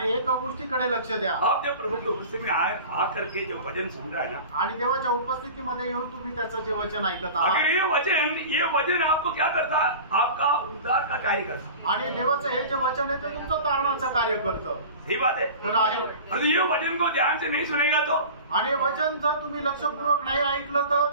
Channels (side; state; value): both; inverted; correlation -0.37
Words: एक गोष्टीकडे लक्ष द्या. आप जब प्रभु की उपस्थिति में आ करके जो वचन सुन रहा है ना, आणि देवाच्या उपस्थितीमध्ये येऊन तुम्ही त्याचं जे वचन ऐकत आहात, अगर ये वचन आपको क्या करता, आपका उद्धार का कार्य करता. आणि देवाचं हे जे वचन आहे ते तुमचं तारणाचं कार्य करतं. सही बात है. खरं आहे. और ये वचन को ध्यान से नहीं सुनेगा तो आणि वचन जर तुम्ही लक्षपूर्वक नाही ऐकलं